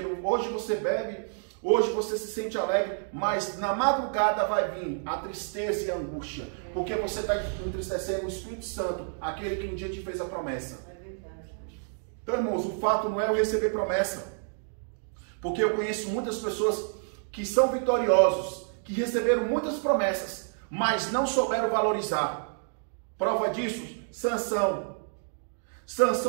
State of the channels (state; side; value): silent; left; digital silence